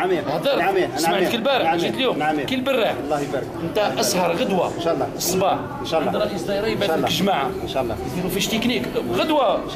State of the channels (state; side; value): identical; both; correlation 1.00